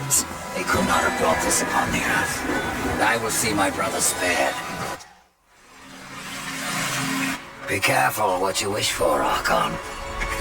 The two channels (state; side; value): identical; both; correlation 1.00